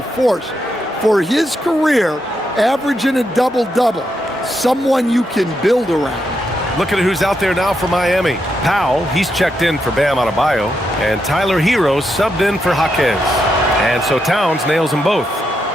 force for his career, averaging a double-double. Someone you can build around. Look at who's out there now for Miami. Powell, he's checked in for Bam Adebayo, and Tyler Herro subbed in for Jaquez. And so Towns nails them both.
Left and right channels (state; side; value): normal; both; correlation 0.82